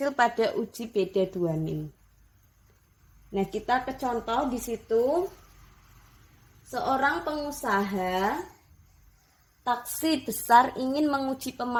pada uji beda 2 min. Nah, kita ke contoh di situ. Seorang pengusaha taksi besar ingin menguji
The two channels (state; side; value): identical; both; correlation 1.00